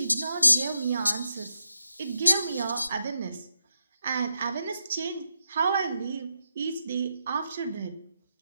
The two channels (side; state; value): both; inverted; correlation -0.84